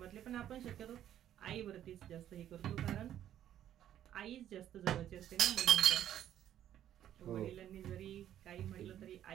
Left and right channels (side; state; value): left; quieter; 11.2 dB